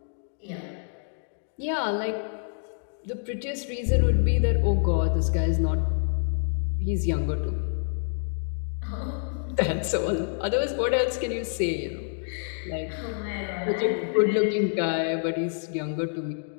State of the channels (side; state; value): right; silent; digital silence